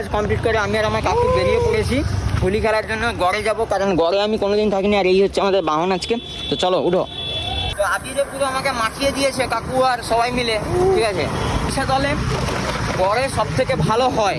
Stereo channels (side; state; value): both; identical; correlation 1.00